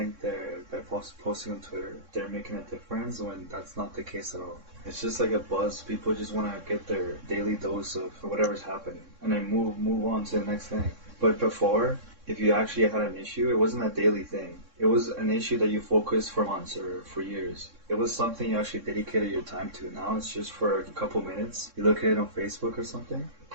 they're posting on Twitter, they're making a difference when that's not the case at all. It's just like a buzz. People just want to get their daily dose of whatever's happening and then move on to the next thing. But before, if you actually had an issue, it wasn't a daily thing. It was an issue that you focused for months or for years. It was something you actually dedicated your time to. Now it's just for a couple minutes. You look at it on Facebook or something,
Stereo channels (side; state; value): left; late; 3.6 ms